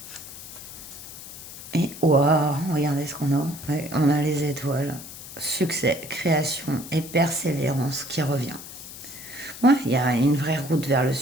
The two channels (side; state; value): left; noise; hiss, 13 dB below the sound